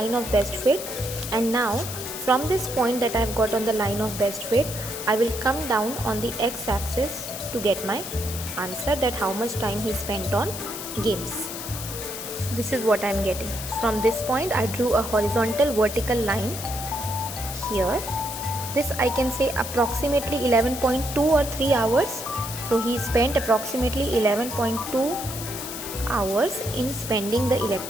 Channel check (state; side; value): noise; left; hiss, 8 dB below the sound